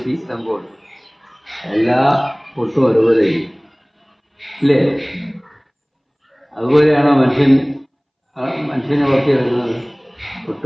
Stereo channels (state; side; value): identical; both; correlation 1.00